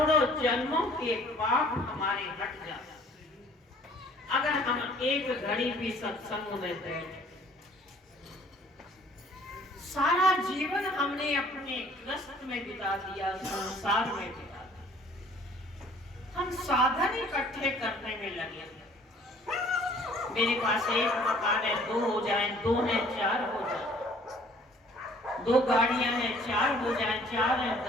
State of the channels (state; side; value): normal; both; correlation 0.55